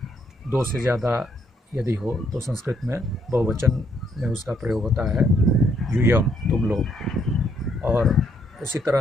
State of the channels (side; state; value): both; normal; correlation 0.72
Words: 2 से ज़्यादा यदि हो तो संस्कृत में बहुवचन में उसका प्रयोग होता है, यूयम, तुम लोग। और उसी